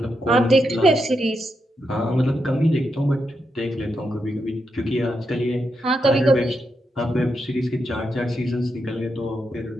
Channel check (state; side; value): normal; both; correlation 0.84